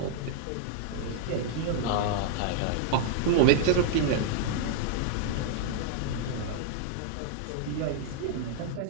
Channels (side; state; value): both; different; correlation -0.01